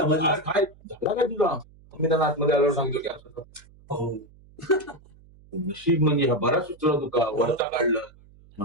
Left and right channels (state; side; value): noise; right; hum, 25 dB below the sound